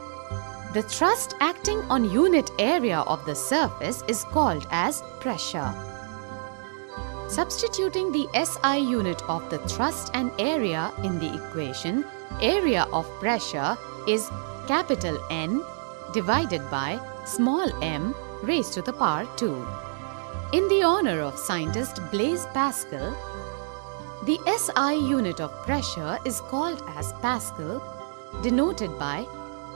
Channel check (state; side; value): silent; left; digital silence